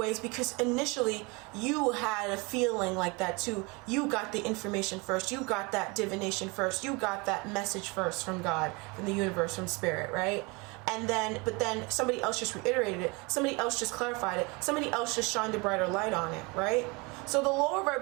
is because initially you had a feeling like that too. You got the information first, you got that divination first, you got that message first from God, from the universe, from spirit, right? But then somebody else just reiterated it, somebody else just clarified it, somebody else just shined a brighter light on it, right? So the lower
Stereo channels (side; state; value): left; quieter; 27.6 dB